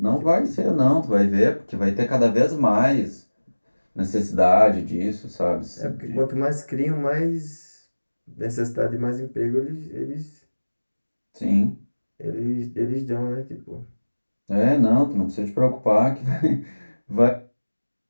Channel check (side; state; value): both; inverted; correlation -1.00